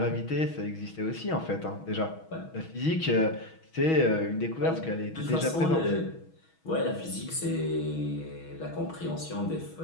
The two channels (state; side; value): late; right; 6.2 ms